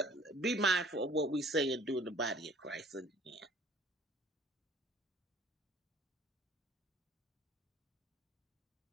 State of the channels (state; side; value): normal; both; correlation 0.53